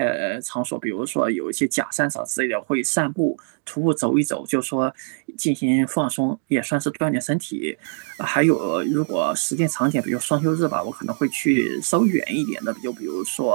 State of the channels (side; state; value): left; silent; digital silence